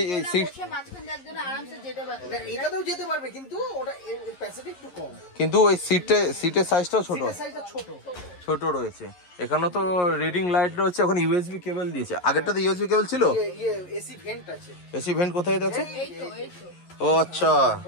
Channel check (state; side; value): late; right; 11 ms